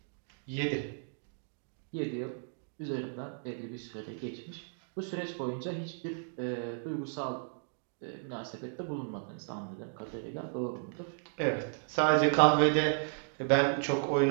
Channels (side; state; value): left; silent; digital silence